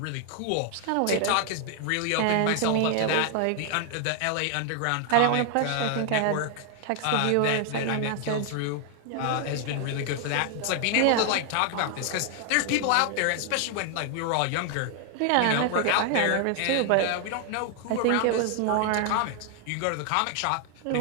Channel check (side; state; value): both; different; correlation 0.00